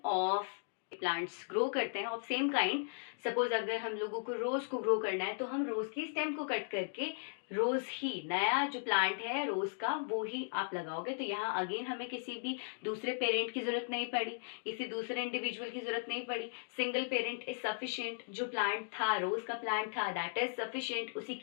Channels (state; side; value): silent; right; digital silence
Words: of plants grow करते हैं ऑफ सेम काइंड. सपोज अगर हम लोगों को रोज को ग्रो करना है तो हम रोज की स्टेम को कट करके रोज ही नया जो प्लांट है रोज का वो ही आप लगाओगे. तो यहाँ अगेन हमें किसी भी दूसरे पेरेंट की जरूरत नहीं पड़ी, किसी दूसरे इंडिविजुअल की जरूरत नहीं पड़ी. Single parent is sufficient. जो प्लांट था, रोज का प्लांट था, दैट इज सफिशिएंट. उसी